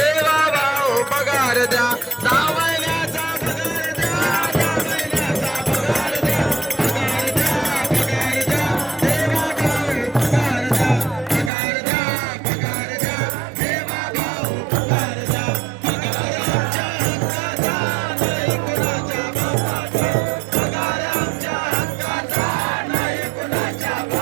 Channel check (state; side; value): drops out; left; at 11.5 s